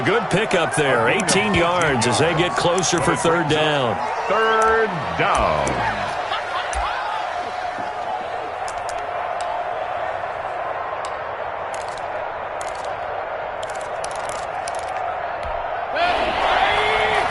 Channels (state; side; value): identical; both; correlation 1.00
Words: good pickup there. 18 yards as they get closer for 3rd down. 3rd down.